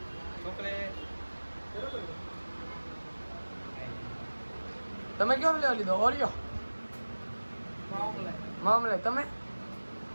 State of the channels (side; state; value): both; inverted; correlation -1.00